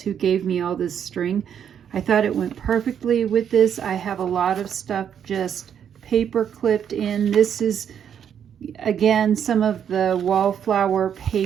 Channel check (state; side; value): quieter; left; 8.6 dB